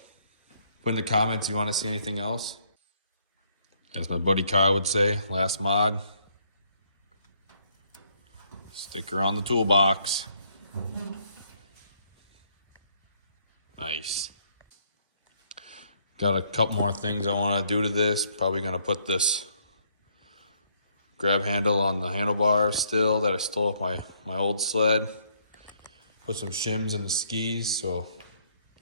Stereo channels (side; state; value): both; inverted; correlation -0.69